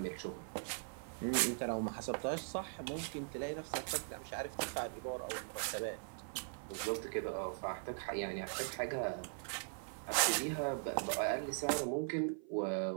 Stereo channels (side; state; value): left; silent; 51 dB below the other